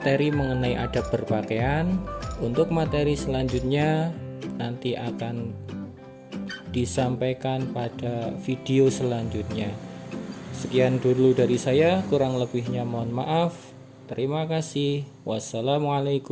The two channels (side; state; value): both; identical; correlation 1.00